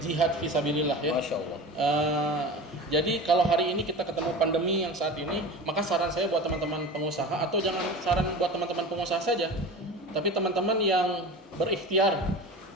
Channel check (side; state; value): both; normal; correlation 0.33